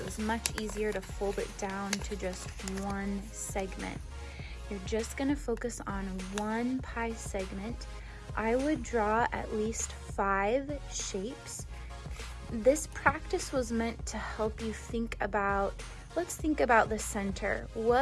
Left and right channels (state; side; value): identical; both; correlation 1.00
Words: was much easier to fold it down to just one segment. You're just going to focus on one pie segment. I would draw at least 5 shapes. This practice was meant to help you think about, let's think about the center.